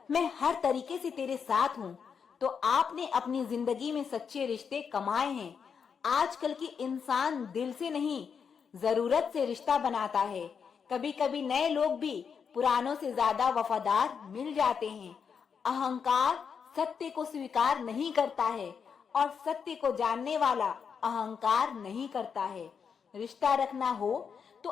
मैं हर तरीके से तेरे साथ हूँ, तो आपने अपनी जिंदगी में सच्चे रिश्ते कमाए हैं। आजकल के इंसान दिल से नहीं, जरूरत से रिश्ता बनाता है। कभी कभी नए लोग भी पुरानों से ज्यादा वफादार मिल जाते हैं। अहंकार सत्य को स्वीकार नहीं करता है और सत्य को जानने वाला अहंकार नहीं करता है। रिश्ता रखना हो तो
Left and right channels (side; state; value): right; quieter; 6.5 dB